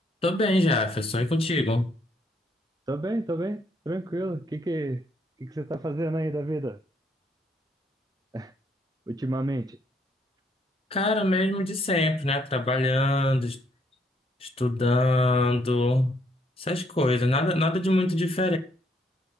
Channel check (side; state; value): both; normal; correlation 0.70